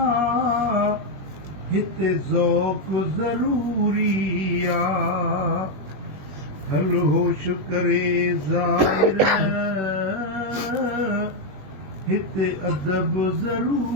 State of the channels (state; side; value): late; left; 21 ms